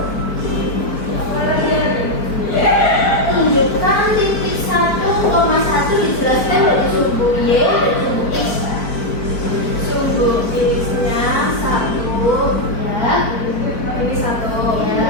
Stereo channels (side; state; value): right; late; 4.5 ms